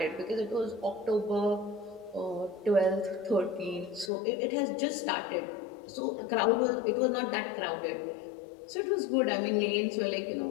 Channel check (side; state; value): right; drops out; at 4.1 s